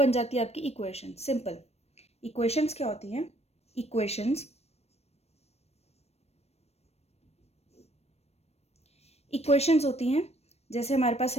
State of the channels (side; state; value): right; late; 0.31 ms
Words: जाती है आपकी इक्वेशन। सिंपल। इक्वेशंस क्या होती हैं? इक्वेशंस होती हैं जैसे हमारे पास